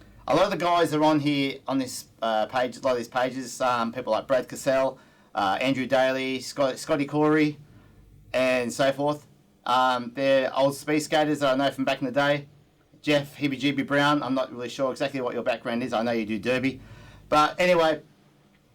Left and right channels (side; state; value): both; identical; correlation 1.00